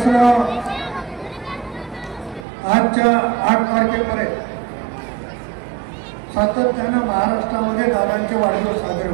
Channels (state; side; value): drops out; left; at 2.5 s